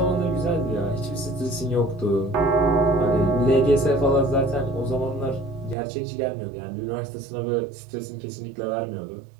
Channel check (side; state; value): left; drops out; at 5.8 s